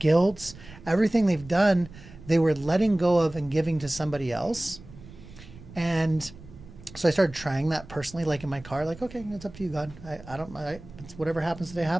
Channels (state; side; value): noise; right; rumble, 18 dB below the sound